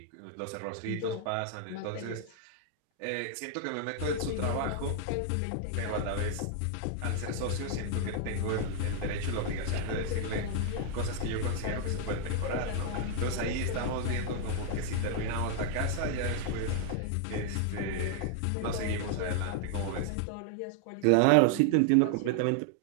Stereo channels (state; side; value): different; both; correlation 0.00